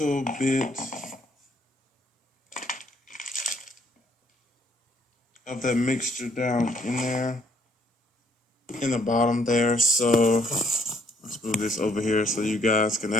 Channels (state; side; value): normal; both; correlation 0.66